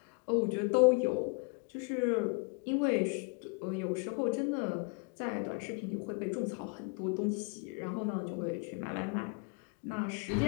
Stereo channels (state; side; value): quieter; right; 34.0 dB